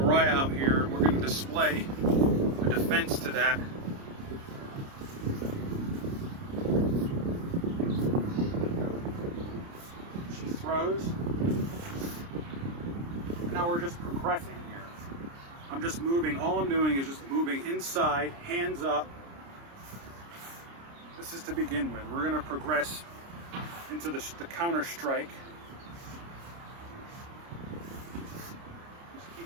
out here and we're going to display a defense to that. She throws. And now we're just progressing here. I'm just moving. All I'm doing is just moving inside, hands up. This is to begin with. We're going to progress into the counter strike.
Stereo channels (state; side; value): late; left; 29 ms